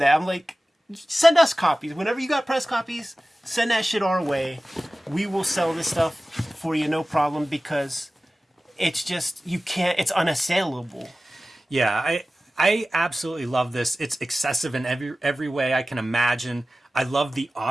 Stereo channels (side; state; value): both; normal; correlation 0.96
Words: I'm like, send us copies. Whenever you got press copies, send that shit our way. We will sell this stuff for you, no problem, because it's just, you can't, it's unassailable. Yeah, I absolutely love this. It's excessive in every way I can imagine. I love the